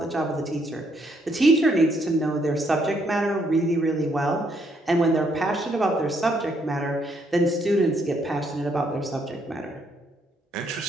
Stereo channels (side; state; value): both; normal; correlation 0.72